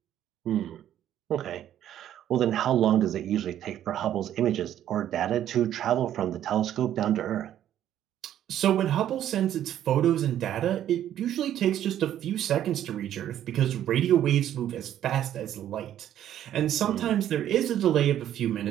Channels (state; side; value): quieter; left; 11.2 dB